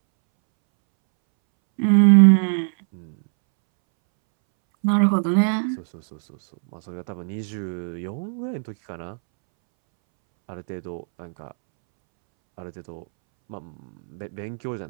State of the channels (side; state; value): left; silent; 64 dB below the other